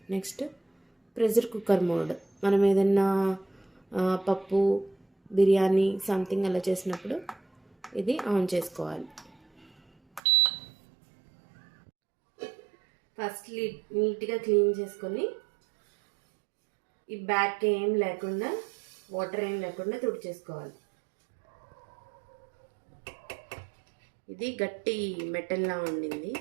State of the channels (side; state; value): left; drops out; at 10.2 s